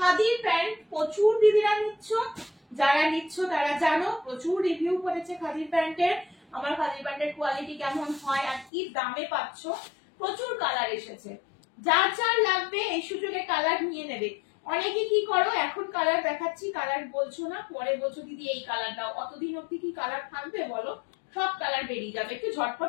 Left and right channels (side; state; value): right; drops out; at 8.7 s